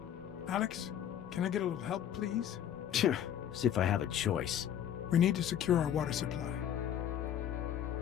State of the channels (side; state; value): right; quieter; 10.0 dB